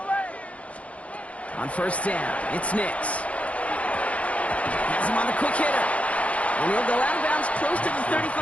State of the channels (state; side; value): late; right; 0.065 ms